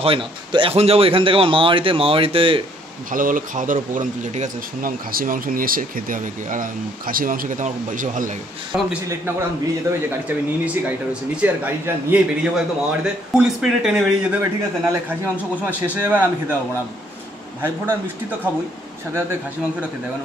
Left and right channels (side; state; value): both; normal; correlation 0.65